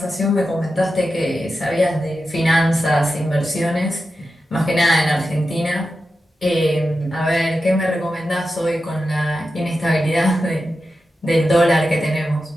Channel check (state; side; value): normal; both; correlation 0.91